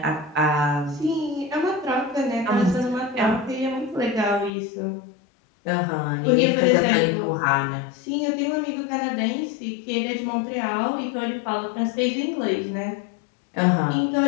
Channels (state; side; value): drops out; right; at 4.5 s